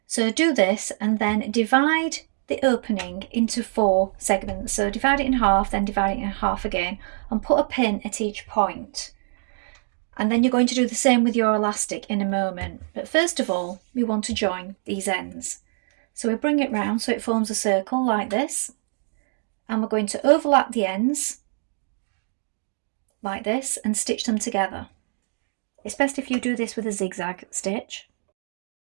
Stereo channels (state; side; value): silent; left; digital silence